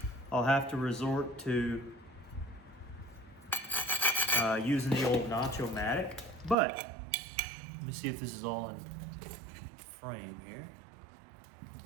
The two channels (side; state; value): left; drops out; at 6.6 s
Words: I'll have to resort to using the old Nacho-matic. But let me see if this is all in frame here.